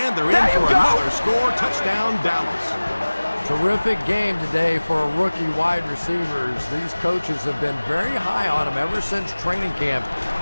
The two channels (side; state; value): both; inverted; correlation -1.00